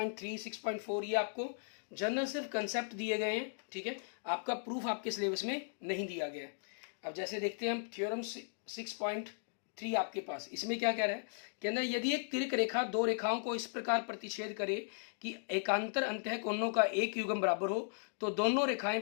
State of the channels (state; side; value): silent; right; digital silence